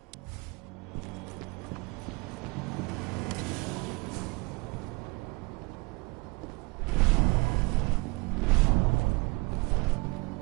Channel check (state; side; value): quieter; left; 27.6 dB